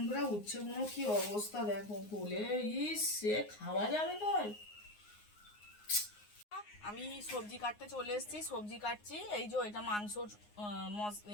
উচ্ছেগুলো কি অবস্থা দেখো, বলে সে খাওয়া যাবে তাই। আমি সবজি কাটতে চলে এসেছি, সবজি কাটছি। এই যে এটা মাংসর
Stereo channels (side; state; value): right; late; 9.6 ms